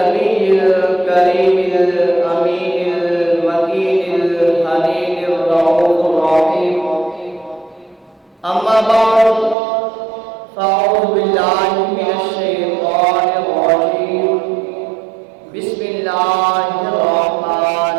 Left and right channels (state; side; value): drops out; left; at 9.6 s